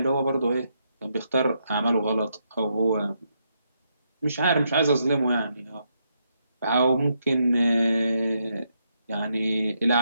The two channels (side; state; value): both; inverted; correlation -0.79